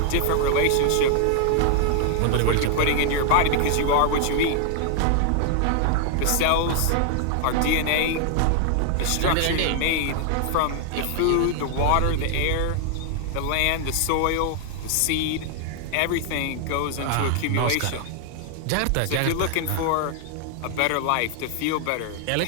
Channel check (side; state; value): both; different; correlation 0.00